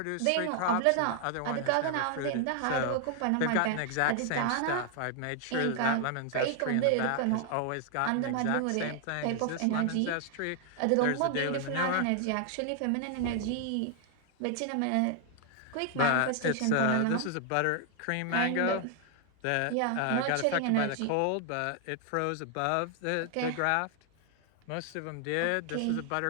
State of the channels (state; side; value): different; both; correlation 0.00